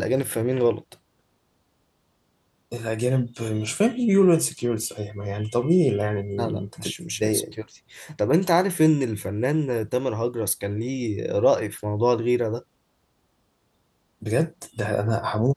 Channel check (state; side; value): identical; both; correlation 1.00